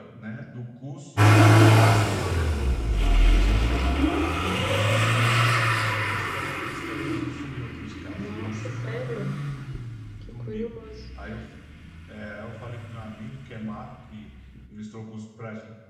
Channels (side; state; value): both; identical; correlation 1.00